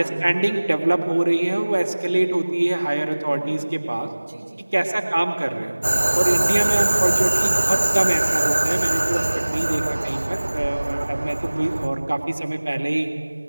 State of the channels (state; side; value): inverted; both; correlation -1.00